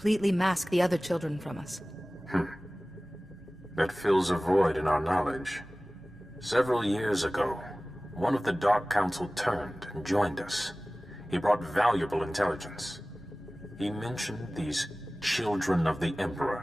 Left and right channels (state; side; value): normal; both; correlation 0.98